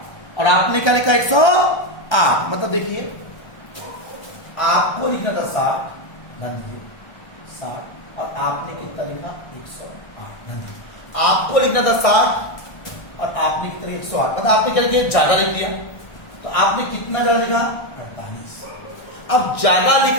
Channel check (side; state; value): right; late; 1.3 ms